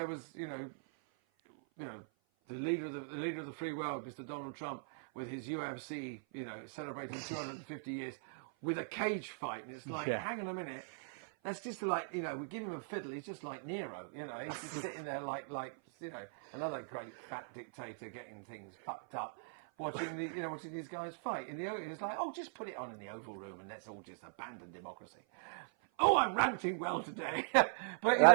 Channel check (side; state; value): left; silent; 51 dB below the other